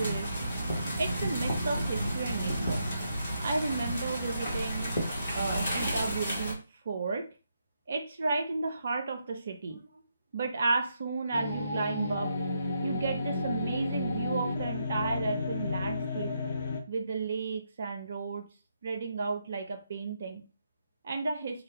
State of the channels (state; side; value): inverted; both; correlation -0.80